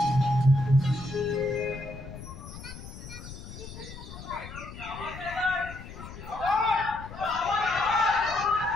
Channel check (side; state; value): left; noise; rumble, 13 dB below the sound